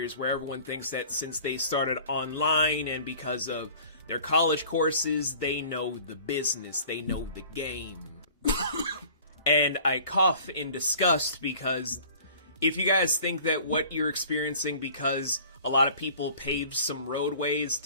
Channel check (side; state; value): both; inverted; correlation -0.48